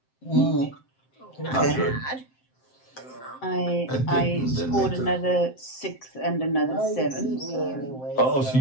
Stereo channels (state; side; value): late; right; 7.7 ms